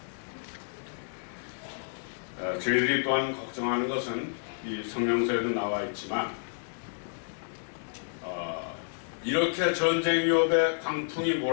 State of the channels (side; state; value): right; silent; 58 dB below the other